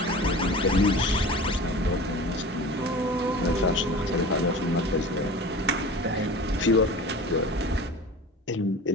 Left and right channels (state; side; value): normal; both; correlation 0.37